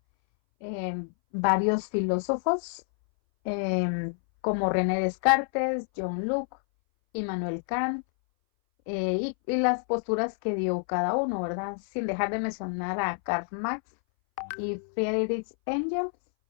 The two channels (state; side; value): silent; right; 59 dB below the other